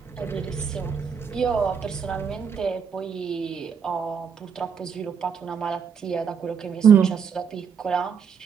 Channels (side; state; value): left; quieter; 6.7 dB